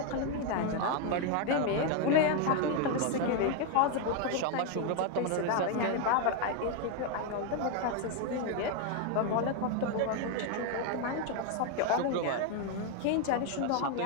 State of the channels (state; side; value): different; both; correlation 0.01